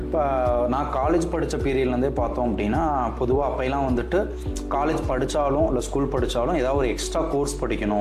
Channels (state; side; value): identical; both; correlation 1.00